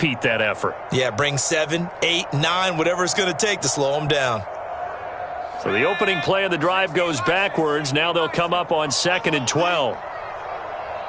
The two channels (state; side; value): identical; both; correlation 1.00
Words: that effort. Yeah, bring 7, 8, 9, whatever it's going to take to slow them down. So the opening play of the drive goes backwards. Now they'll come up on 2nd and 12.